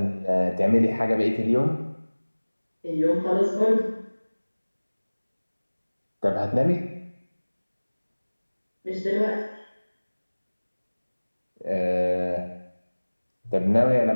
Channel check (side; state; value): both; inverted; correlation -1.00